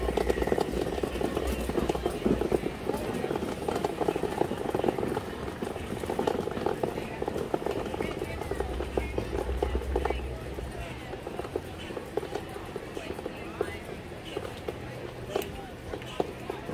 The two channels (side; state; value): both; identical; correlation 1.00